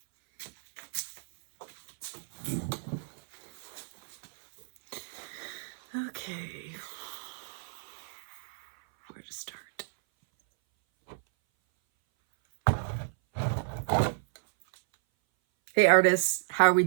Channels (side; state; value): left; silent; 57 dB below the other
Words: Okay. Where to start? Hey artists, how are we